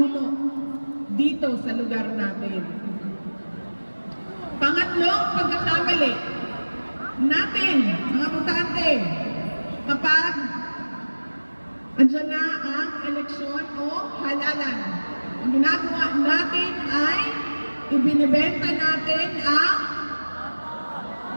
dito sa lugar natin. Pangatlong pagkakamali natin, mga butante, Andiyan na ang eleksyon o halalan. Ang ginagawa natin ay ibinibenta natin ang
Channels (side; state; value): both; inverted; correlation -1.00